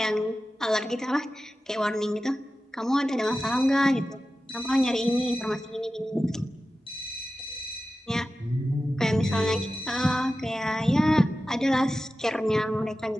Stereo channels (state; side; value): normal; both; correlation 0.94